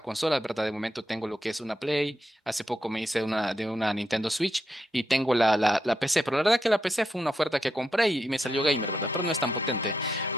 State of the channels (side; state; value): both; normal; correlation 0.84